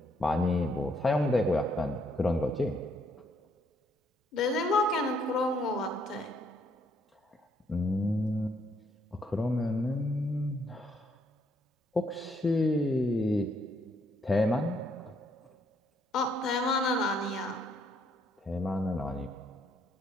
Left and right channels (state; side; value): normal; both; correlation 0.71